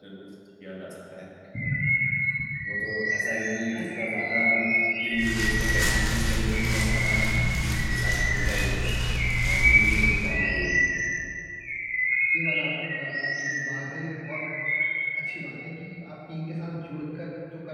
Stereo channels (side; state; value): both; identical; correlation 1.00